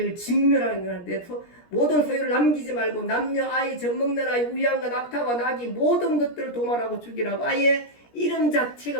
진멸하는 건데 모든 소유를 남기지 말고 남녀 아이 젖먹는 아이 우양과 낙타와 나귀 모든 것들을 도말하고 죽이라고 아예 이름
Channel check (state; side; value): late; right; 17 ms